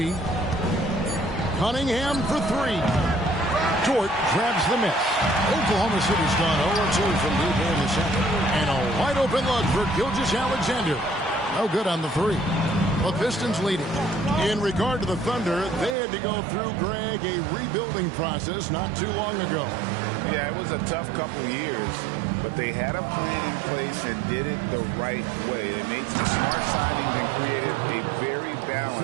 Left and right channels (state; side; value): drops out; left; at 16.0 s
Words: Cunningham for 3. Dort grabs the miss. Oklahoma City's gone 0-2 from deep in the second. And a wide open look for Gilgeous-Alexander. No good on the 3. The Pistons leading. In regard to the Thunder, they had to go through, Greg, a rebuilding process not too long ago. Yeah, it was a tough couple years, but they had a plan in place and did it the right way. They made some smart signings and created a very